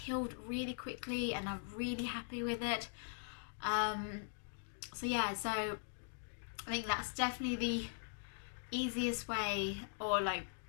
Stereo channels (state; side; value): silent; right; digital silence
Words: really quickly and I'm really happy with it. So yeah, so I think that's definitely the easiest way, or like